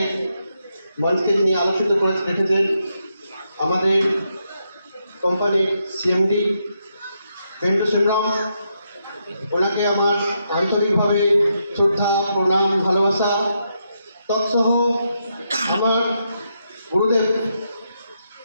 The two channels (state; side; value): inverted; both; correlation -0.81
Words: মঞ্চকে যিনি আলোচিত করে রেখেছেন আমাদের কোম্পানির সিএমডি বেন্টু সংগ্রাম, ওনাকে আমার আন্তরিকভাবে শ্রদ্ধা, প্রণাম, ভালোবাসা। তৎসহ আমার